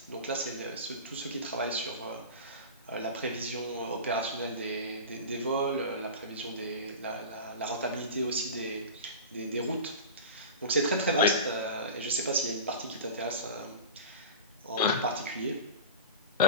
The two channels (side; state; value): both; inverted; correlation -0.31